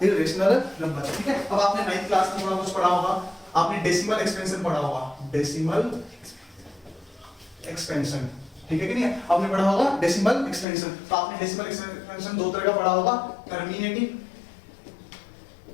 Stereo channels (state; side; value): drops out; right; at 10.7 s